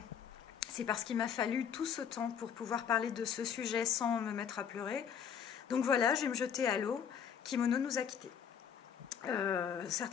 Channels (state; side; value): quieter; right; 7.8 dB